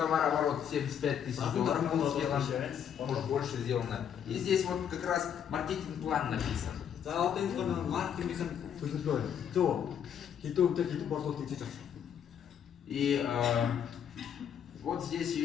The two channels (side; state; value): right; quieter; 8.7 dB